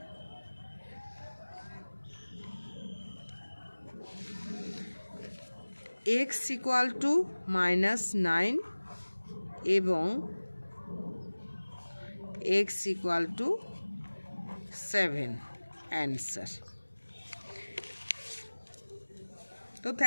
এক্স ইকুয়াল টু মাইনাস 9 এবং এক্স ইকুয়াল টু 7 অ্যান্সার। তো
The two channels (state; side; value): inverted; both; correlation -1.00